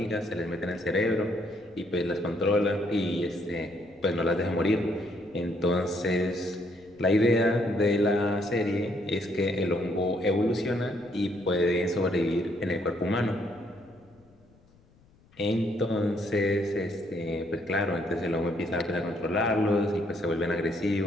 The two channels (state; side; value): noise; left; rumble, 29 dB below the sound